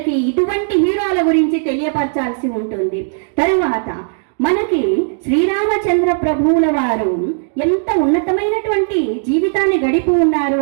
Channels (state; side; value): silent; left; digital silence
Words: ఇటువంటి హీరోల గురించి తెలియపరచాల్సి ఉంటుంది. తరువాత మనకి శ్రీరామచంద్ర ప్రభువుల వారు ఎంత ఉన్నతమైనటువంటి జీవితాన్ని గడిపి ఉన్నారు